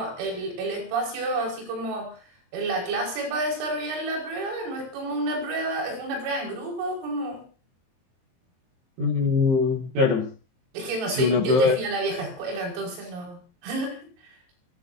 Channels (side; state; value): left; late; 23 ms